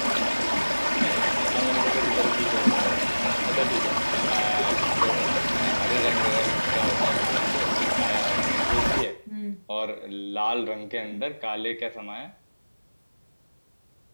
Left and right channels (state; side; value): inverted; both; correlation -1.00